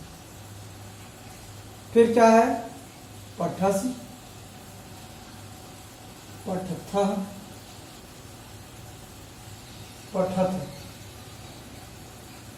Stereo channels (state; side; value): identical; both; correlation 1.00